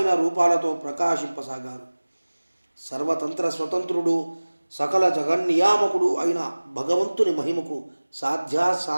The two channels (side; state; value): both; inverted; correlation -1.00